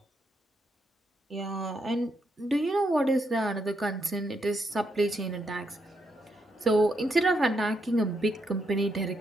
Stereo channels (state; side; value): normal; both; correlation 0.79